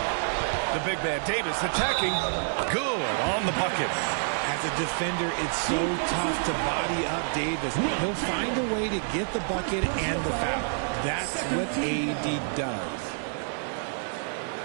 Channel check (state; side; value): silent; left; 59 dB below the other